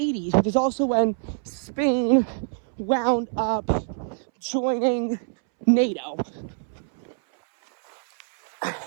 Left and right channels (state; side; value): silent; left; 62 dB below the other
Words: which is also when Spain wound up joining NATO.